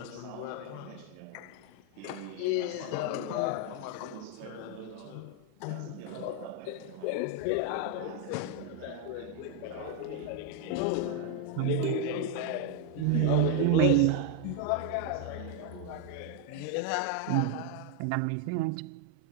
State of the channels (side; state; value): both; different; correlation 0.01